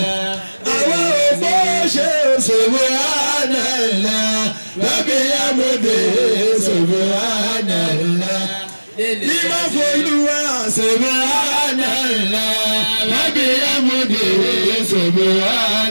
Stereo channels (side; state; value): both; inverted; correlation -1.00